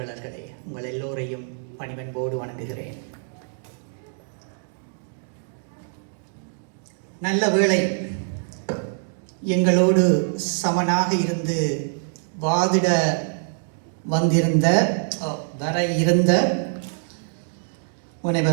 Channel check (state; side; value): silent; left; digital silence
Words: உங்கள் எல்லோரையும் பணிவன்போடு வணங்குகிறேன். நல்ல வேளை எங்களோடு சமனாக இருந்து வாதிட வர இருந்த